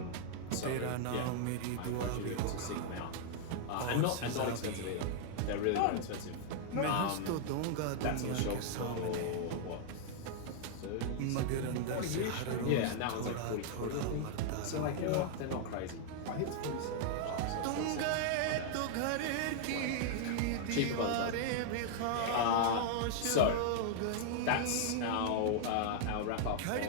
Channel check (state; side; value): different; both; correlation -0.01